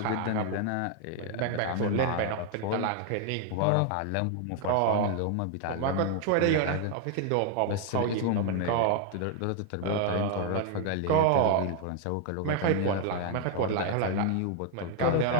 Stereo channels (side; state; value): both; different; correlation 0.00